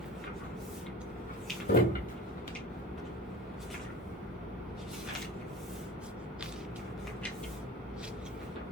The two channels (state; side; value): normal; both; correlation 0.35